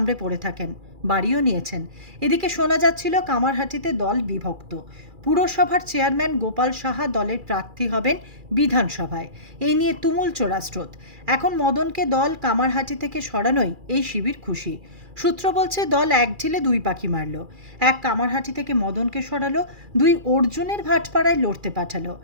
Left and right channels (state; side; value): late; left; 2.4 ms